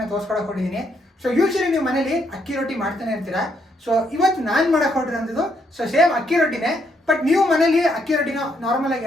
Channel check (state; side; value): normal; both; correlation 0.74